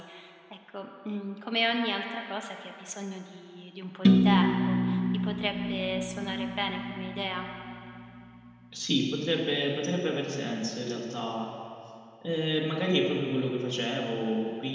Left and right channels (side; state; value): both; identical; correlation 1.00